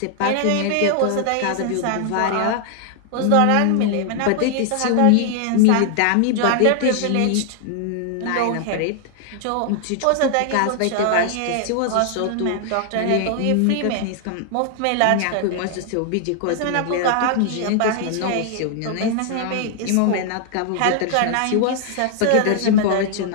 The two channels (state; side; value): different; both; correlation 0.00